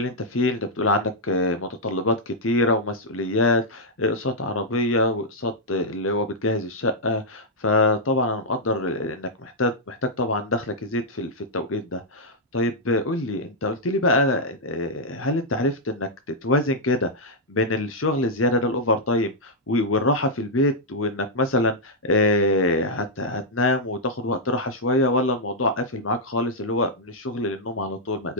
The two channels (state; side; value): normal; both; correlation -0.05